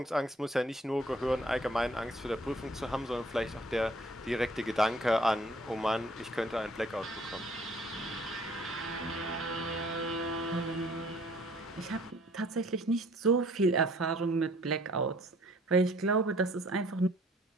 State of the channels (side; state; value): both; normal; correlation 0.57